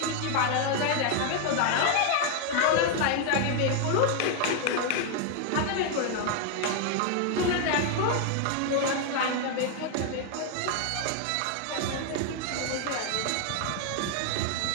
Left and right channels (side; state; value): both; different; correlation 0.00